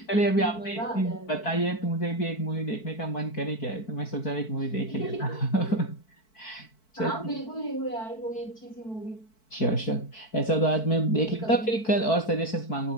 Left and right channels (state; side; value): late; right; 4.6 ms